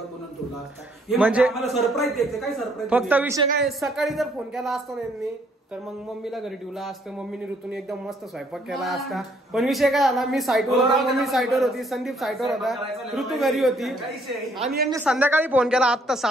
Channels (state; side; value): normal; both; correlation 0.66